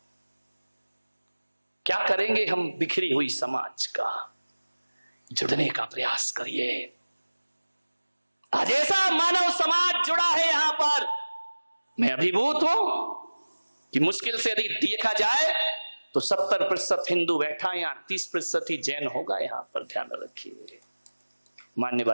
क्या करेंगे हम बिखरी हुई समाज का? जुड़ने का प्रयास करिए। आज ऐसा मानव समाज जुड़ा है यहां पर, मैं अभिभूत हूं कि मुश्किल से यदि देखा जाए तो 70% हिंदू बैठा है, यहां 30% ही जैन होगा यहां पर। ध्यान रखिए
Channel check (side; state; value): both; inverted; correlation -1.00